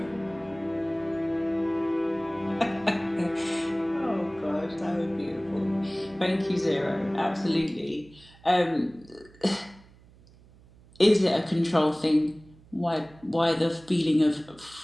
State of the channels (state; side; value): noise; right; hum, 25 dB below the sound